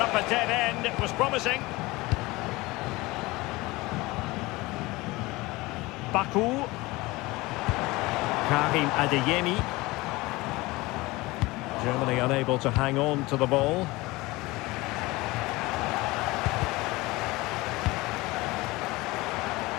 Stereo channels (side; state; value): right; quieter; 21.4 dB